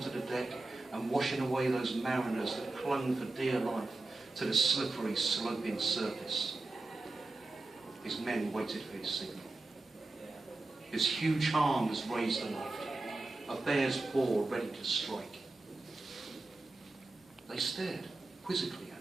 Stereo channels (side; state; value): left; quieter; 3.1 dB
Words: the deck and washing away those mariners that clung for dear life to the slippery, sloping surface. His men waited for his signal. His huge arm was raised aloft, a bear's paw ready to strike. They stared quizzically at